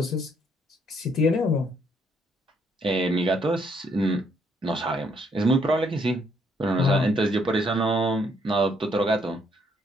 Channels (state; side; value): normal; both; correlation 0.70